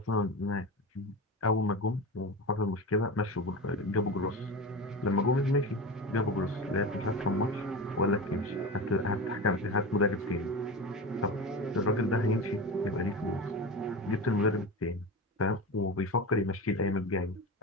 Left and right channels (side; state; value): both; normal; correlation 0.26